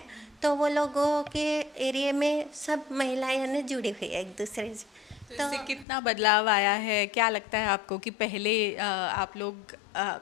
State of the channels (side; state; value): right; drops out; at 5.9 s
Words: तो वो लोगों के एरिया में सब महिलाएं यानी जुड़ी हुई है एक दूसरे से। तो इससे कितना बदलाव आया है? क्या लगता है आपको कि पहले आप लोग